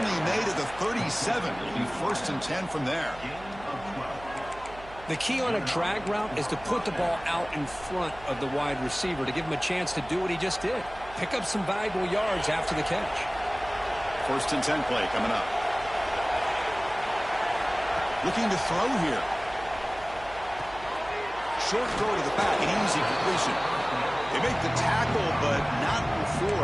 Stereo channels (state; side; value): noise; right; hum, 18 dB below the sound